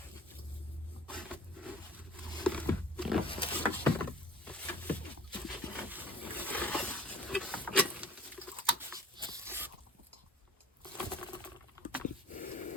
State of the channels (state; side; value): normal; both; correlation 0.46